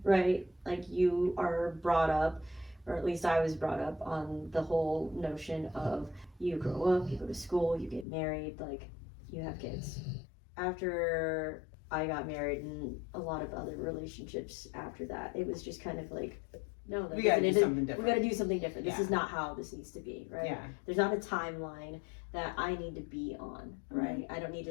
right? Like you are brought up, or at least I was brought up on the whole notion of you grow up, you go to school, you get married, like you have kids. After I got married and a lot of other relationships after that, it was just kind of like, no, we gotta do something different. We gotta do something different. This is not how this needs to be, right? Yeah. There's not a timeline that I need to be on, right? I don't need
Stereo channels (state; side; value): drops out; right; at 8.1 s